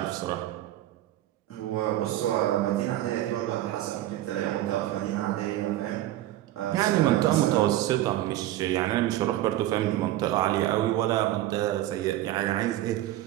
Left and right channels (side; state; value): left; quieter; 14.3 dB